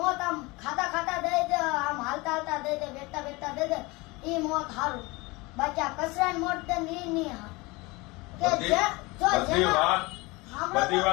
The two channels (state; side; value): quieter; right; 24.0 dB